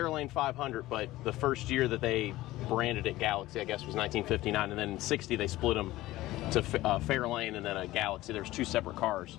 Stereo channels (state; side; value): quieter; right; 17.0 dB